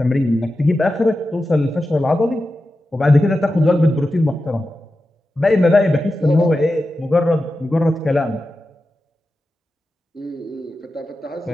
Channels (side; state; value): both; normal; correlation 0.92